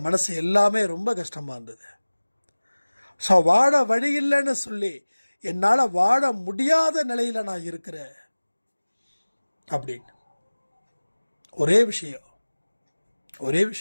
மனசு எல்லாமே ரொம்ப கஷ்டமாக இருந்தது. ஸோ வாழ வழி இல்லைன்னு சொல்லி என்னால் வாழ முடியாத நிலையில் நான் இருக்கிறேன் அப்படின்னு. ஒரே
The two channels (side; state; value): both; inverted; correlation -1.00